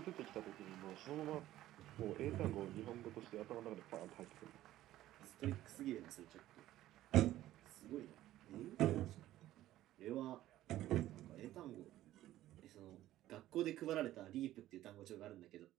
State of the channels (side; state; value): left; quieter; 14.3 dB